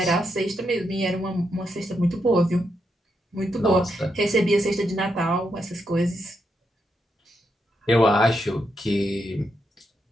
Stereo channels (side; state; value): both; normal; correlation 0.82